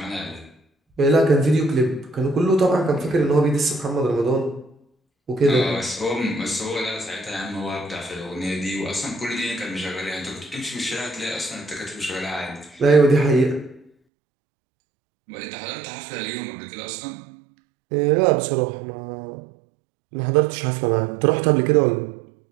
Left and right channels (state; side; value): drops out; left; at 13.9 s